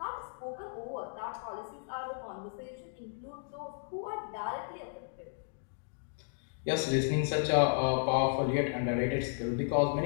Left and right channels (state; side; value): silent; right; digital silence